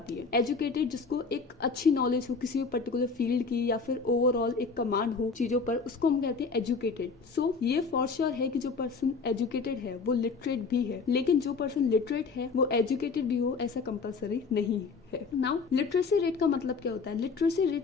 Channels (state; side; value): quieter; right; 4.7 dB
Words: है. Educated जिसको एक अच्छी नॉलेज हो किसी पर्टिकुलर फील्ड की या फिर ओवरऑल एक कमांड हो चीजों पर उसको हम कहते हैं एजुकेटेड. सो ये फॉर श्योर है कि जो पर्सन एजुकेटेड है वो लिटरेट भी है, लेकिन जो पर्सन लिटरेट है वो एजुकेटेड भी हो ऐसा कंपलसरी नहीं है. नाउ लिटरेसी रेट का मतलब क्या होता है? Literacy